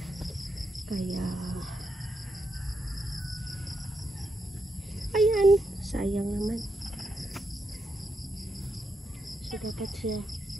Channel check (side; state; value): both; normal; correlation 0.83